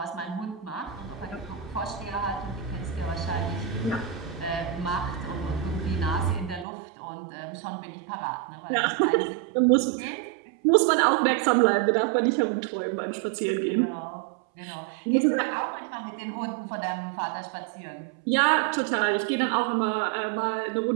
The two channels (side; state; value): left; drops out; at 6.7 s